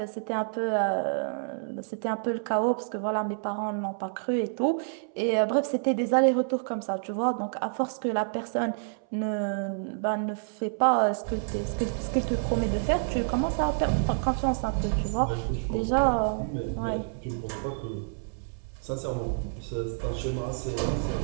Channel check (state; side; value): silent; left; 59 dB below the other